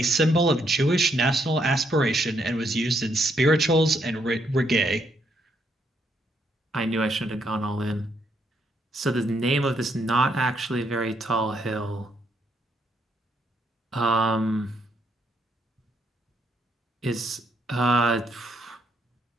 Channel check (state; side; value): normal; both; correlation 0.74